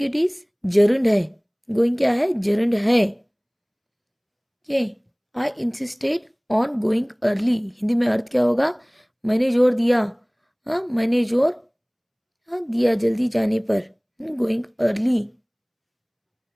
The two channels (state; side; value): identical; both; correlation 1.00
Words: इट इज जर्नड है, गोइंग क्या है, जर्नड है। के आई insisted on going early, Hindi में अर्थ क्या होगा, मैंने जोर दिया, हाँ मैंने जोर, हाँ दिया जल्दी जाने पर, गोइंग अर्ली,